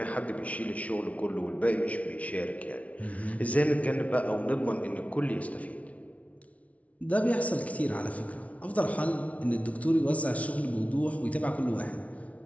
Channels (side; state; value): right; late; 0.066 ms